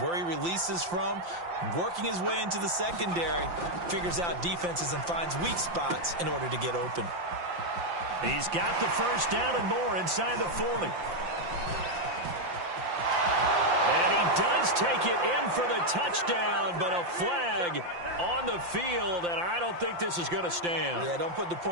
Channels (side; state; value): left; late; 5.8 ms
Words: where he releases from. Working his way into the secondary, figures out defenses and finds weak spots in order to get open. He's got the first down and more inside the 40. And he does take it in for the touchdown, but a flag on the field, and I don't think this is going to stand. Yeah, don't put the